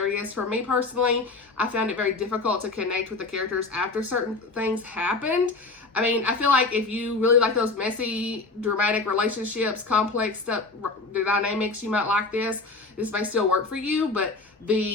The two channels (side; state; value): right; quieter; 3.6 dB